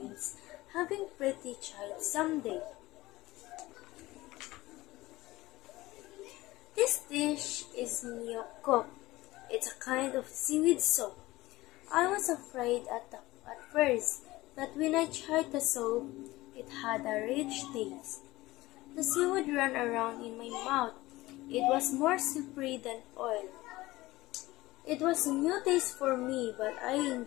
having pretty child someday. This dish is myeokguk. It's a kind of seaweed soup. I was afraid at first, but when I tried the soup, it had a rich taste. The seaweed ran around in my mouth. It was more slippery than oil. It was a new taste for me, but I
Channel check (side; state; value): right; quieter; 18.7 dB